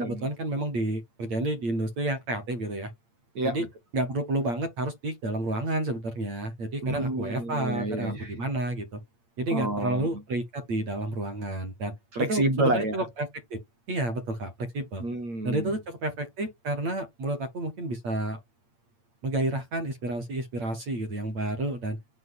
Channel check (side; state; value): left; late; 8.7 ms